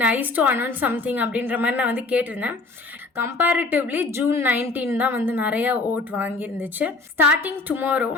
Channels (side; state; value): right; quieter; 3.4 dB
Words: nice to announce something அப்படின்ற மாதிரி நான் வந்து கேட்டிருந்தேன். கம்பேரிட்டிவ்லி June 19 தான் வந்து நிறைய ஓட் வாங்கியிருந்துச்சு. Starting tomorrow